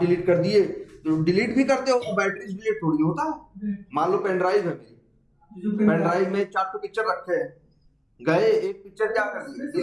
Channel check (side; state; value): both; identical; correlation 1.00